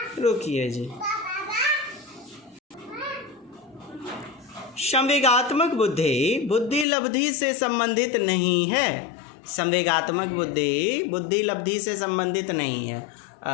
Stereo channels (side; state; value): right; drops out; at 6.9 s